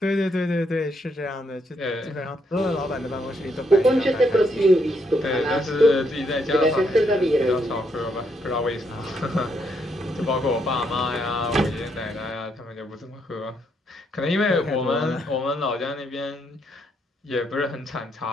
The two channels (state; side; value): normal; both; correlation 0.75